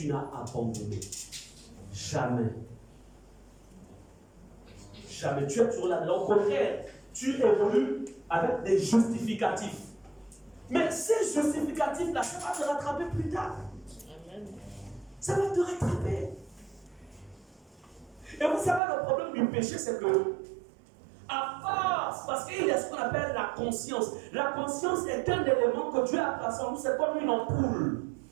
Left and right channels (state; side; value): drops out; left; at 18.8 s